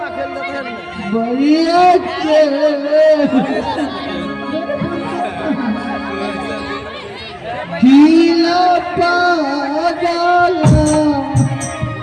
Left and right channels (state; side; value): identical; both; correlation 1.00